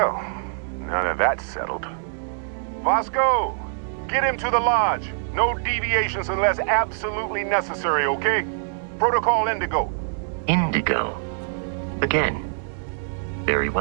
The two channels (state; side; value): silent; left; digital silence